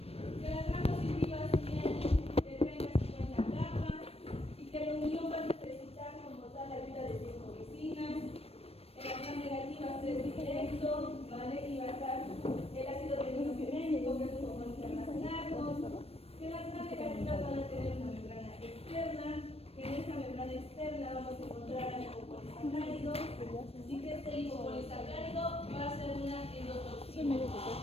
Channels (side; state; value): right; late; 0.28 ms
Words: que las gram positivas tienen de 30 a 50 capas y que la unión va a necesitar como tal la ayuda de 5 vecinas. En las gram negativas es directo, ¿vale? Y va a estar el ácido ribonucleico, que es un compuesto internacional, que las gram negativas van a tener una membrana externa, que en esta membrana externa vamos a encontrar lipopolisacáridos y que este lipopolisacárido va a ser una endotoxina.